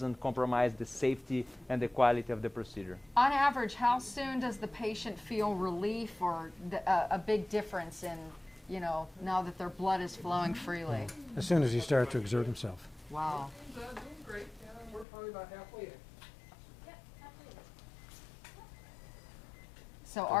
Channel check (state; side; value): drops out; right; at 15.1 s